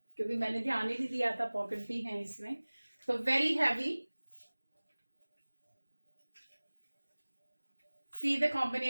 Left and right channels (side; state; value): both; inverted; correlation -1.00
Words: क्योंकि मैंने ध्यान ही नहीं दिया था, पॉकेट भी हैं इसमें। तो very heavy, See the